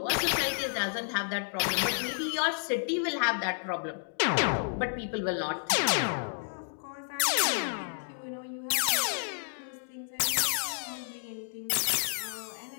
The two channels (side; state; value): right; silent; digital silence